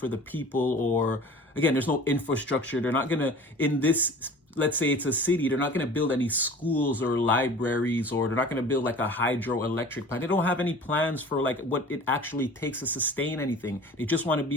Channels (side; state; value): both; normal; correlation 0.42